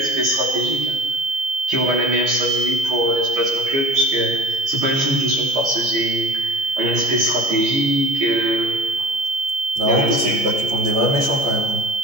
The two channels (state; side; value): late; left; 15 ms